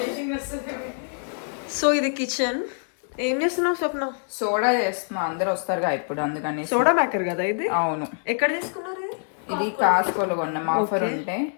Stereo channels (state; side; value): silent; right; digital silence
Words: సో ఇది కిచెన్. ఏం చేస్తున్నావు స్వప్న? సోడా చేస్తున్నా, అందరు వస్తారుగా ఇప్పుడు, అందుకని. సోడా మేకర్ కదా ఇది? అవును. ఎక్కడ తీసుకున్నారు? ఇది కాస్కోలో కొన్నాం, ఆఫర్ ఉంటే.